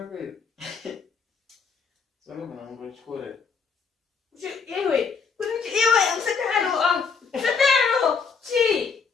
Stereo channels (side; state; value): right; quieter; 5.4 dB